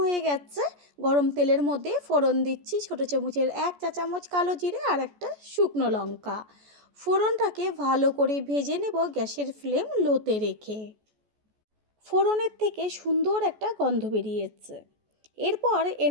হয়ে গেছে, গরম তেলের মধ্যে ফোড়ন দিচ্ছি ছোটো চামচের 1 চা চামচ কালো জিরে আর একটা শুকনো লঙ্কা। ফোড়নটাকে ভালো করে ভেজে নেব গ্যাসের ফ্লেম লোতে রেখে। ফোড়নের থেকে সুন্দর একটা গন্ধ বেরিয়েছে। এরপর এর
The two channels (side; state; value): left; late; 14 ms